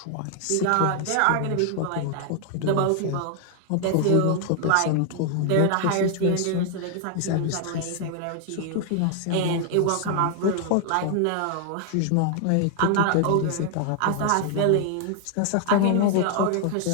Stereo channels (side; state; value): both; different; correlation 0.00